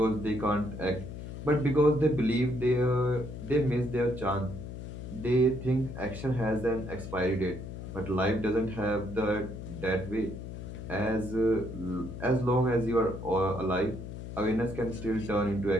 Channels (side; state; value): left; noise; hum, 9 dB below the sound